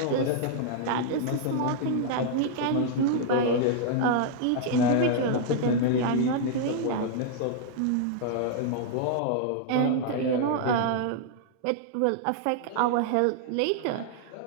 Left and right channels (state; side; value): different; both; correlation -0.01